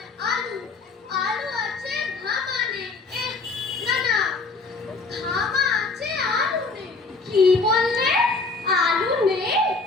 আলু আলু আছে ঘামানে। না না, ঘামা আছে আলু নেই। কি বললে? আলু নেই?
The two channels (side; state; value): right; quieter; 3.9 dB